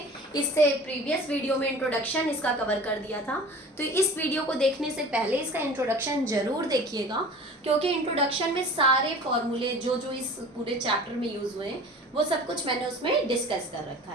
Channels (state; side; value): normal; both; correlation 0.41